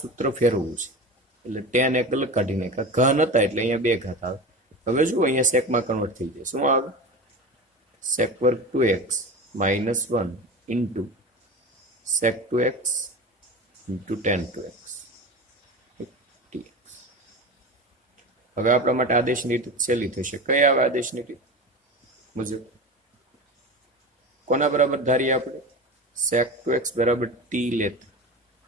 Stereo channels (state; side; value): normal; both; correlation 0.29